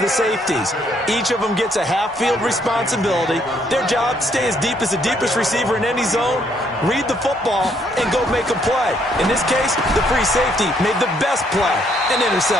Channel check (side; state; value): both; normal; correlation 0.69